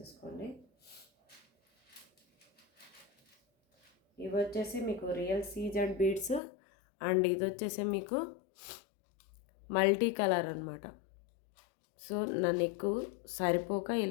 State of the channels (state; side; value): drops out; right; at 6.4 s